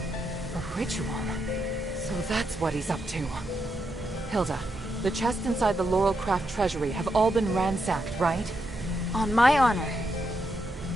A ritual. So that's what he's up to. Hilda, the chests inside the Laurelcraft treasury have all been ransacked, right? On my honor.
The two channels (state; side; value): normal; both; correlation 0.82